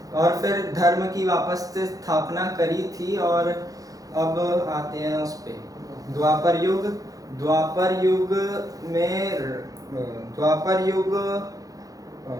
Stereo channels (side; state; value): left; late; 0.17 ms